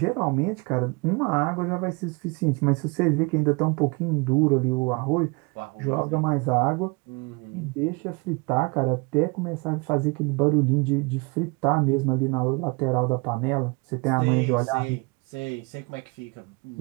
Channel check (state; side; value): quieter; left; 28.9 dB